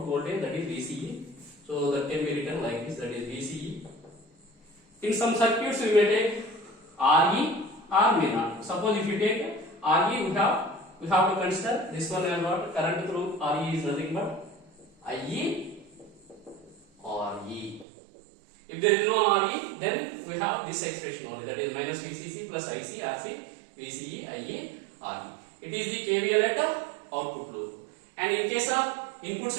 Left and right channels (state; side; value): drops out; left; at 17.9 s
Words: voltage, that is VCE. So that can be written like this, that is VCE. In some circuits, we may take RE or may not. Suppose if you take RE, we have to consider this one as what? Current through RE is nothing but IE or E. If there is no RE, then we have this expression only, that is minus VCC plus IC, RC, VCE, IE, RE. It is the KVL at the output loop. And in case of input